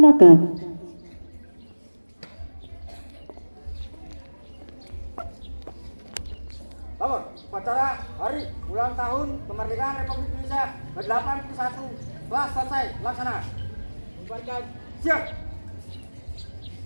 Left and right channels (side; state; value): both; inverted; correlation -1.00